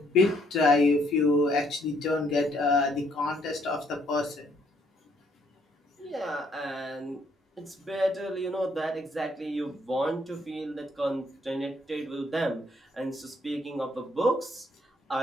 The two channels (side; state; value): both; normal; correlation 0.69